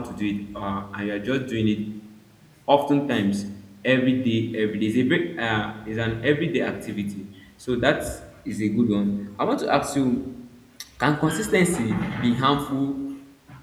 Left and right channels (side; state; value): both; identical; correlation 1.00